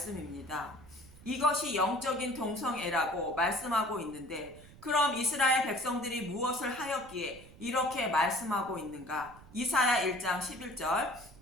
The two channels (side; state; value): right; noise; rumble, 21 dB below the sound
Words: 이것이 영적인 동성애라고 말씀하고 있는데 그럼 이스라엘 백성들이 무엇을 하였기에 이렇게 말씀하고 있는가? 이사야 1장 11절